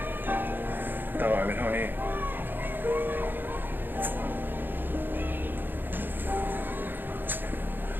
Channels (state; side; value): late; left; 0.095 ms